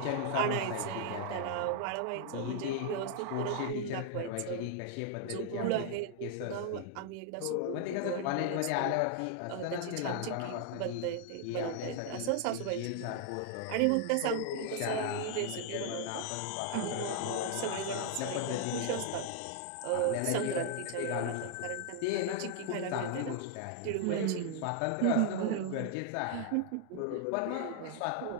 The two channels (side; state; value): both; different; correlation 0.00